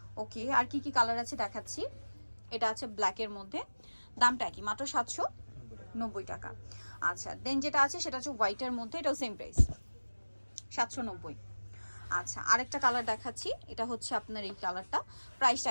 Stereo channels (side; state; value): both; inverted; correlation -1.00